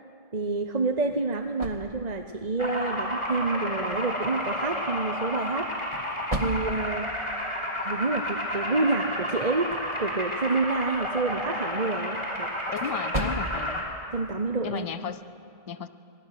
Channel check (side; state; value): left; late; 1.7 ms